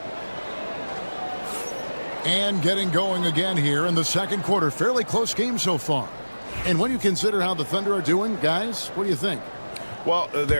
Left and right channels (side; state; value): both; inverted; correlation -1.00